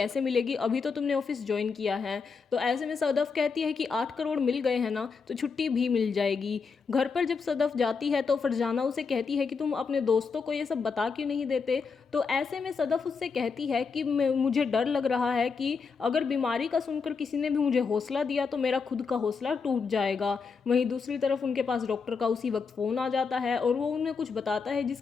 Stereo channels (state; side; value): quieter; right; 5.2 dB